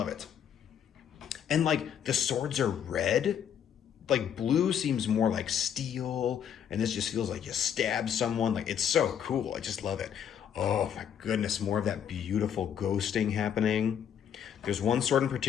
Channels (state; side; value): quieter; right; 8.7 dB